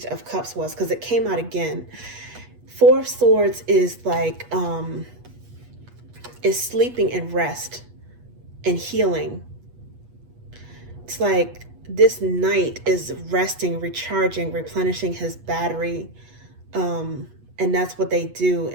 of Cups was, because it came out again. 4 of Swords is like, is sleeping and rest and healing. It's like this knight is resting, recharging, replenishing his battery. And that's what they do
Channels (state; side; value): late; left; 8.3 ms